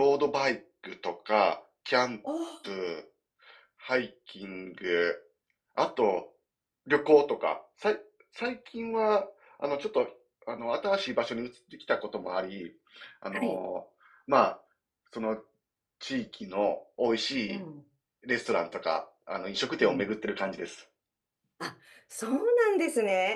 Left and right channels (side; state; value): both; identical; correlation 1.00